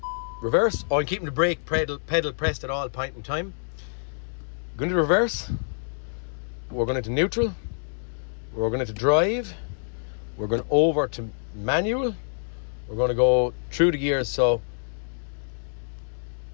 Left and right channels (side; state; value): right; silent; digital silence